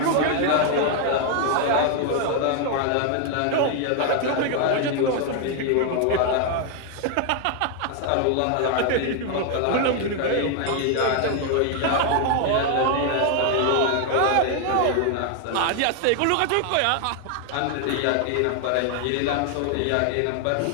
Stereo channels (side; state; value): both; different; correlation 0.00